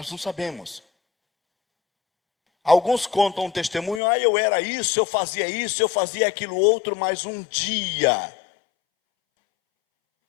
não sabemos. Alguns contam um testemunho, eu era isso, eu fazia aquilo outro, mas um dia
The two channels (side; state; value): right; drops out; at 4.0 s